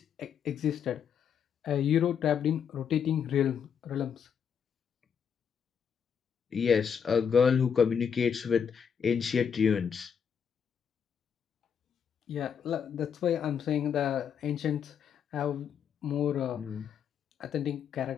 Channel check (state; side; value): quieter; right; 7.5 dB